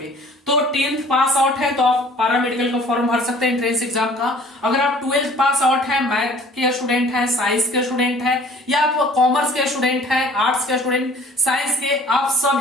तो 10th पास आउट है तो आप पैरामेडिकल का फॉर्म भर सकते हैं एंट्रेंस एग्जाम का। अगर आप 12th पास आउट है, मैथ के स्टूडेंट हैं, साइंस के स्टूडेंट हैं, या आप कॉमर्स के स्टूडेंट हैं, आर्ट्स के स्टूडेंट, साइंस के, आप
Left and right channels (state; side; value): normal; both; correlation 0.51